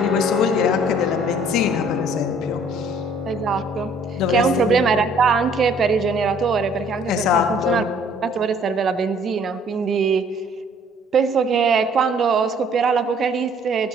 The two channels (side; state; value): both; normal; correlation 0.58